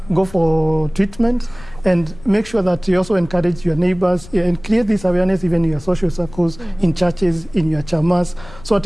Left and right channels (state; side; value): noise; left; rumble, 19 dB below the sound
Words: go for treatment, and make sure that you also encourage your neighbors and create this awareness even in your social circles, in churches, in your chamas, so at